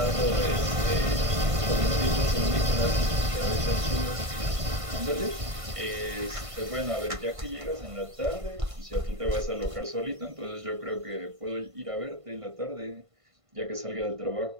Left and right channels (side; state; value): left; late; 1.5 ms